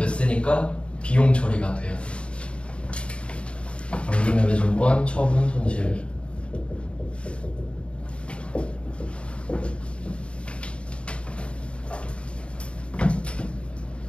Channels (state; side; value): late; right; 0.058 ms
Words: 비용 처리가 돼요. 단기매매증권 처분 손실.